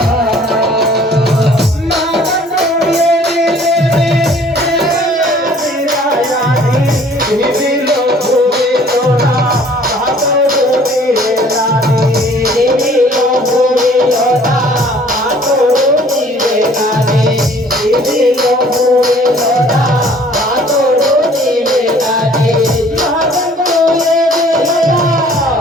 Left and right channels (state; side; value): normal; both; correlation 0.55